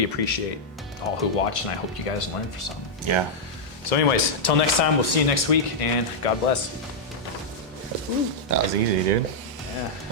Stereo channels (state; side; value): normal; both; correlation -0.05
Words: appreciate all who watched. And I hope you guys learned for something. Yeah. So, anyways, until next time, we'll see you next week, and God bless. That was easy, dude. Yeah.